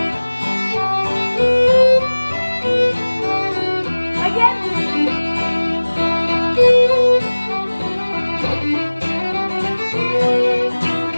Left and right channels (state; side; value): inverted; both; correlation -1.00